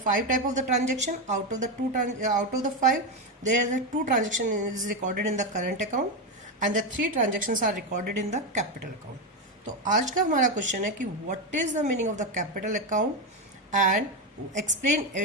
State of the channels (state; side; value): normal; both; correlation 0.10